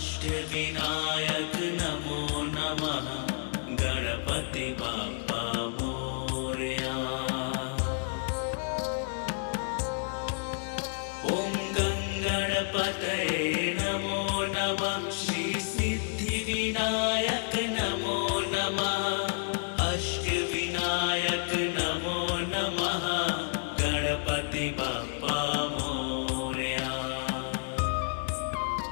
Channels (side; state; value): right; silent; digital silence